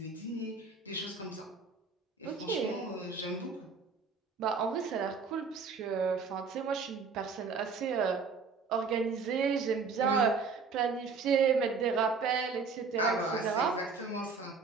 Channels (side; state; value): left; quieter; 5.0 dB